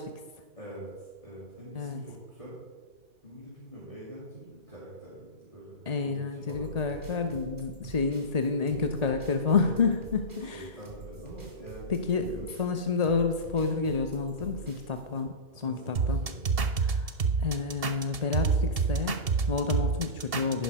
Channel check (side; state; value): left; late; 2.7 ms